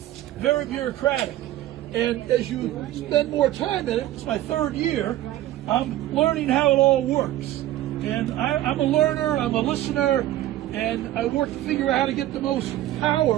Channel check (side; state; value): left; quieter; 14.2 dB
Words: bureaucratic. And as you spend more time in it, it's my 3rd year, I'm learning how it all works. And I'm a learner, I'm a listener, and I work to figure out how to get the most